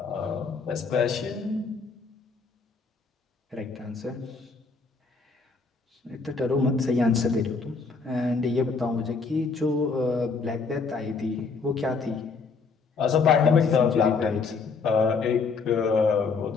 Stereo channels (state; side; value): quieter; right; 4.7 dB